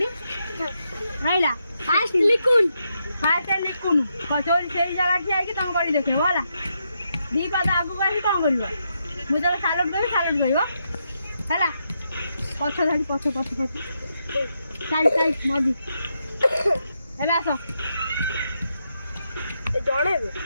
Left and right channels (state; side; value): inverted; both; correlation -0.82